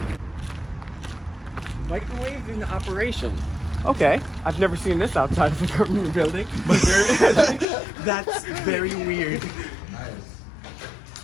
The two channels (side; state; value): right; drops out; at 7.7 s